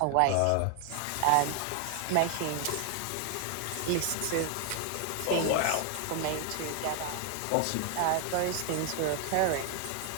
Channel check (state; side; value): different; both; correlation 0.00